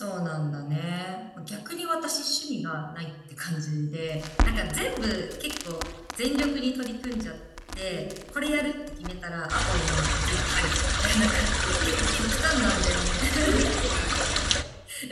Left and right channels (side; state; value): both; identical; correlation 1.00